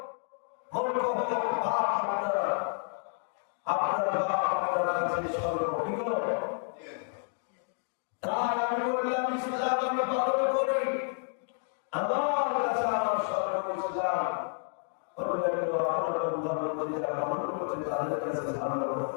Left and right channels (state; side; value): silent; right; 57 dB below the other